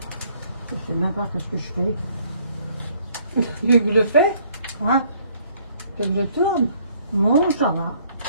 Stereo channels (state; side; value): inverted; both; correlation -0.63